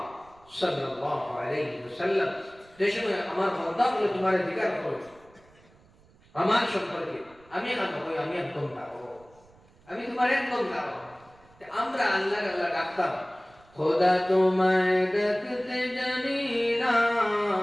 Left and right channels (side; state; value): right; noise; rumble, 28 dB below the sound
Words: সাল্লাল্লাহু আলাইহি ওয়াসাল্লাম, যে সময় আমার বান্দা বলে তোমার জিজ্ঞাসা করে আমার সম্পর্কে, আমি এখন কই আমি একদম দাও, আমি তোমার একদম দাও। আমরা আল্লাহ আল্লাহ ডাকতাম, খোদা তোমায় ডাকতে জানি না,